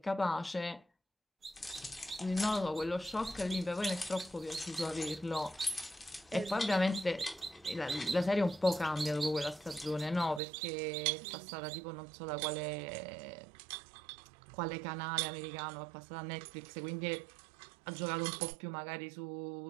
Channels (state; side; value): drops out; left; at 10.4 s